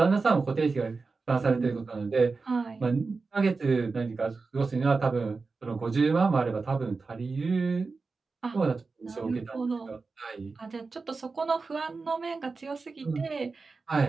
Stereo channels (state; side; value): quieter; left; 4.2 dB